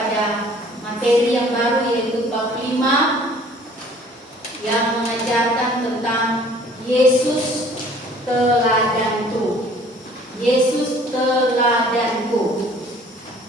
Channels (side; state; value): both; normal; correlation 0.53